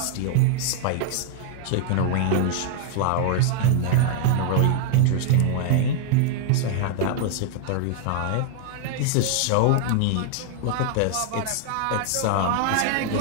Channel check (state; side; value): different; both; correlation 0.00